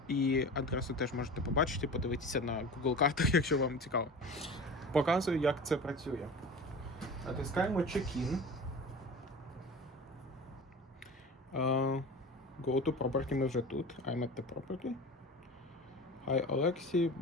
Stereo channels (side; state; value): both; normal; correlation 0.34